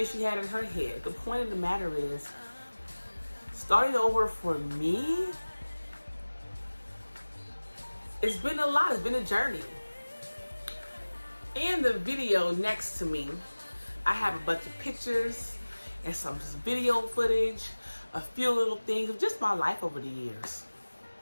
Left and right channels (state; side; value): inverted; both; correlation -1.00